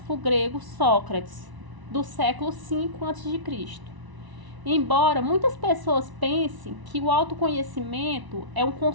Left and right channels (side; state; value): left; late; 1.0 ms